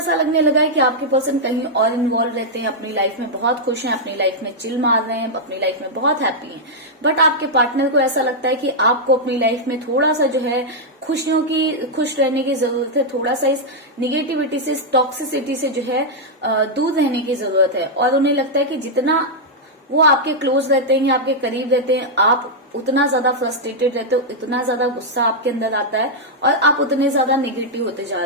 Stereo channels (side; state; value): both; normal; correlation -0.05